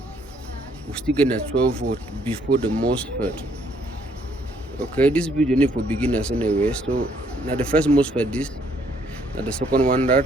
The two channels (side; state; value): both; normal; correlation 0.67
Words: We still get a 12 volt before the MOSFET. Okay, this video need for beginners anyway. So now the first MOSFET this, now the second one that,